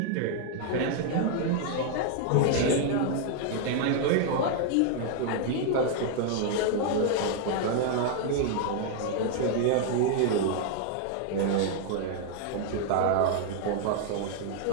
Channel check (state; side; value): different; both; correlation 0.00